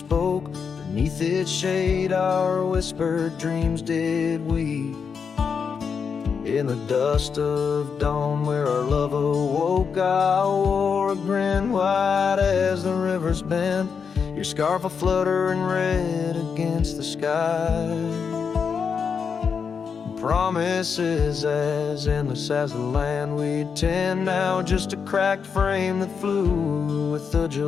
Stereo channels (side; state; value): right; quieter; 6.2 dB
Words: Beneath its shade our whispered dreams did weep. In the dust of dawn where our love awoke, I wore a grin white as the river's bend, your scarf a-fluttering red against the sky. Promises as endless as the land we'd tend, now just a cracked frame that flew with the